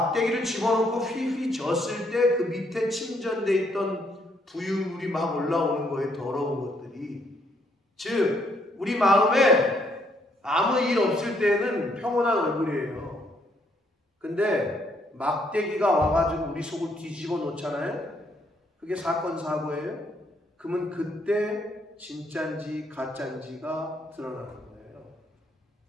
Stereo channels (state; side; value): normal; both; correlation 0.71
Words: 집어넣고 휘휘 젓을 때 그 밑에 침전되어 있던 부유물이 막 올라오는 거예요. 더러운 것들이. 즉 우리 마음에 아무 일 없을 때는 평온한 얼굴이에요. 근데 막대기가 와가지고 우리 속을 뒤집어 놓잖아요. 그게 사건 사고예요. 그러면 그때 진짜인지 가짜인지가 드러나는 거예요.